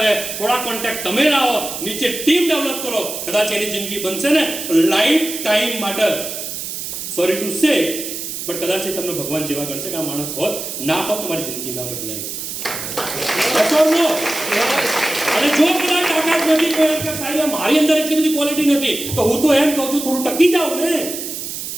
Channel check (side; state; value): right; noise; hiss, 6 dB below the sound